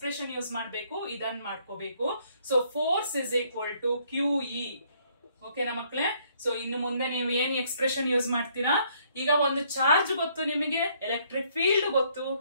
use ಮಾಡಬೇಕು? ಇದನ್ನ ಮಾಡ್ಕೋಬೇಕು. So force is equal to QE. ಓಕೆನಾ ಮಕ್ಕಳೇ? So ಇನ್ನು ಮುಂದೆ ನೀವು ಏನ್ ಎಕ್ಸ್ಪ್ರೆಷನ್ ಯೂಸ್ ಮಾಡ್ತೀರಾ? ಈಗ ಒಂದು ಚಾರ್ಜ್ ಗೊತ್ತು ನಿಮಗೆ, ಎಲೆಕ್ಟ್ರಿಕ್ ಫೀಲ್ಡ್ ಗೊತ್ತು,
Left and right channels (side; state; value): both; inverted; correlation -0.66